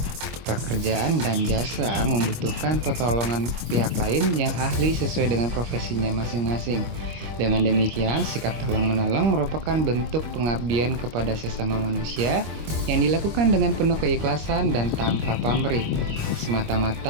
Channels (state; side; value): late; left; 25 ms